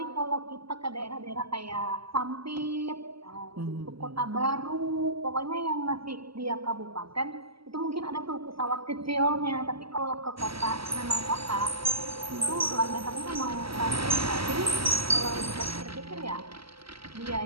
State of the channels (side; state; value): left; late; 0.75 ms